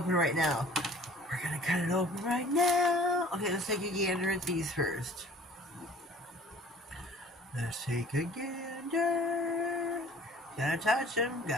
right now. Okay, let's take a gander at these first. Let's take a gander. Gotta touch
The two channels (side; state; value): both; normal; correlation 0.49